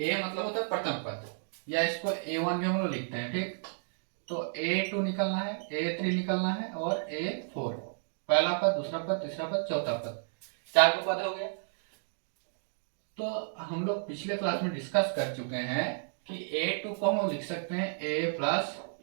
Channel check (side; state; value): left; silent; digital silence